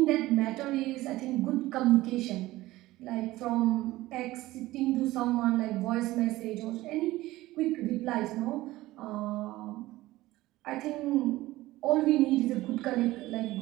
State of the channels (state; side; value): quieter; left; 17.5 dB